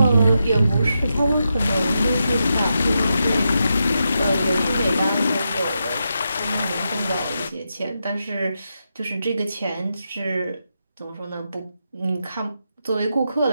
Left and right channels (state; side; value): inverted; both; correlation -0.86